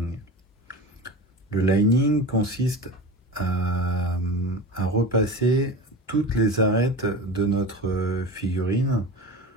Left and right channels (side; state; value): both; normal; correlation 0.30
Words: Le lining consiste à repasser toutes les arêtes de notre figurine,